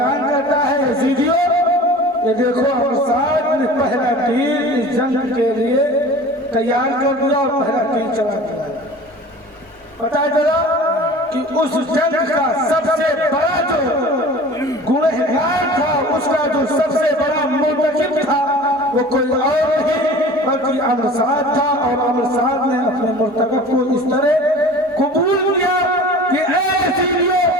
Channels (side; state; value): both; normal; correlation 0.41